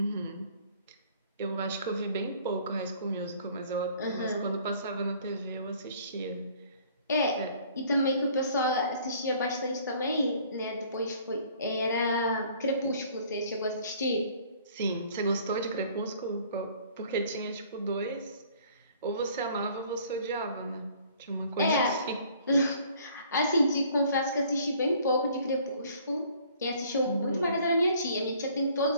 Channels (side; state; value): both; inverted; correlation -0.56